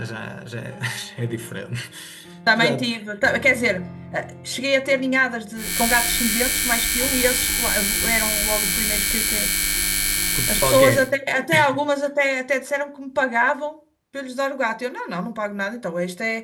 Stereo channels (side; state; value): both; identical; correlation 1.00